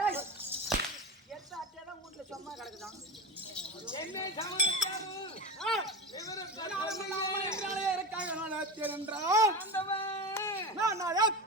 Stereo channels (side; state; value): both; normal; correlation 0.23